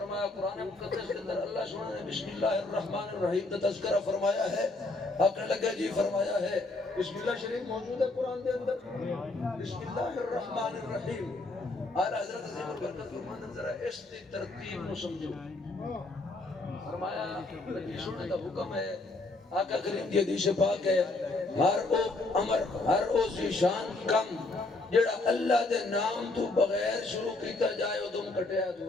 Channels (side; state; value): right; quieter; 3.1 dB